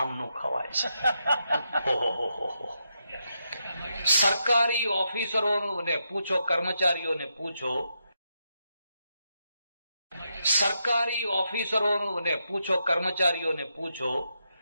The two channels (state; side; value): inverted; both; correlation -0.83